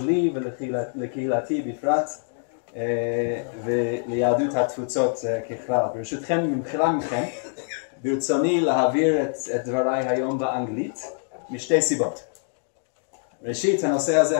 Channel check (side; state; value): right; silent; digital silence